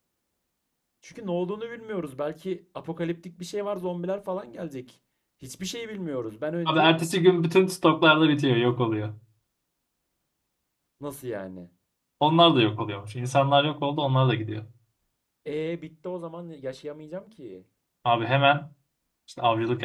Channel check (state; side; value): identical; both; correlation 1.00